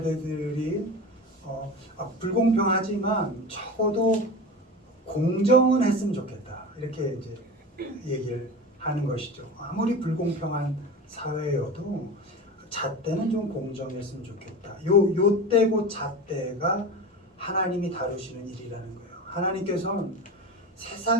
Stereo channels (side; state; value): both; normal; correlation 0.30